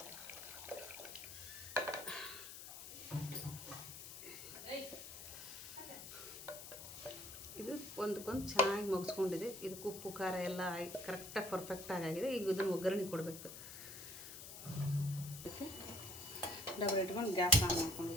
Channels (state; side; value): noise; left; hiss, 11 dB below the sound